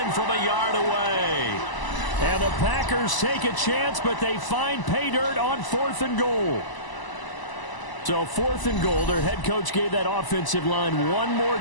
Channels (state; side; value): late; right; 1.0 ms